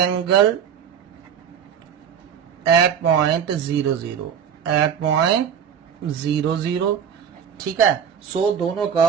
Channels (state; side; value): quieter; left; 8.1 dB